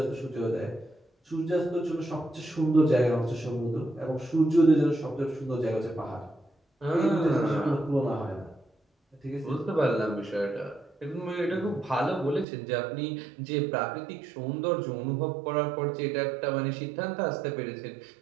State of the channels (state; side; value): drops out; left; at 12.5 s